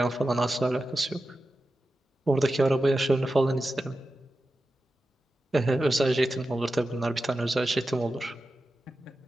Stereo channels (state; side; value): normal; both; correlation 0.92